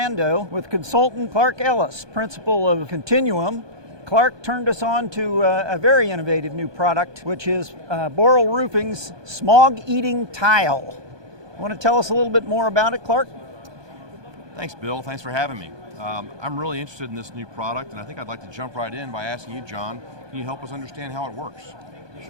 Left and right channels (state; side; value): late; left; 1.2 ms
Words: with consultant Clark Ellis, principal of Continuum. Clark turned us on to a very innovative new product, which is Boral Roofing's Smog-Eating tile. Want to tell us a little bit more about it, Clark? Thanks, Bill. Thanks for having me. I'm really interested in this new product, and I think I'd like to jump right in by asking you, John, can you help us understand how it works?